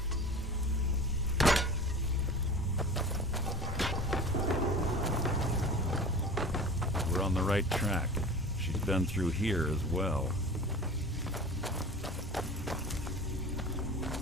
We're on the right track. She's been through here as well.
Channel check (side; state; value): both; normal; correlation 0.36